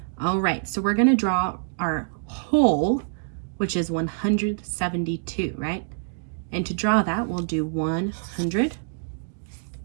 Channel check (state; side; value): silent; left; digital silence